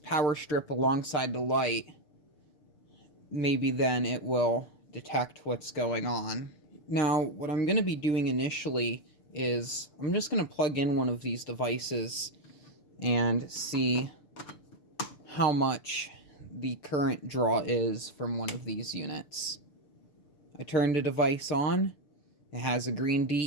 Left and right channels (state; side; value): late; right; 6.8 ms